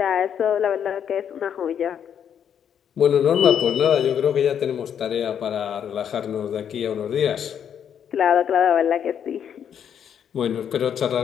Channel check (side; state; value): right; quieter; 8.6 dB